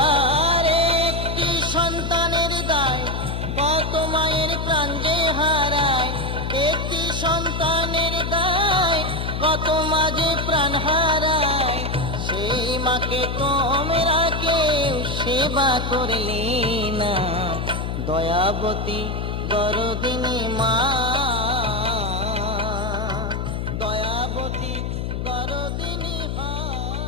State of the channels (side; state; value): left; noise; hum, 3 dB below the sound